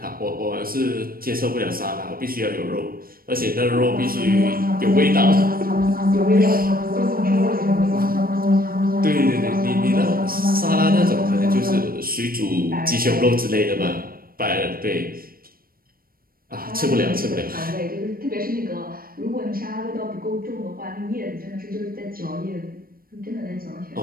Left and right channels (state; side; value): late; left; 0.43 ms